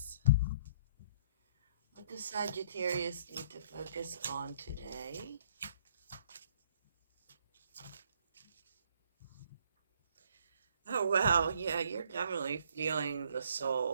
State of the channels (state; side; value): inverted; both; correlation -0.63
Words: What does Sagittarius need to focus on today? Oh wow, yeah, you're definitely feeling the